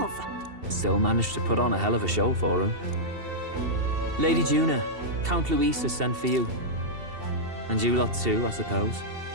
Still managed to put on a hell of a show for him. Lady Juna, Count Luis has sent for you. And you lot too, I suppose.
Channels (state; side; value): late; left; 2.7 ms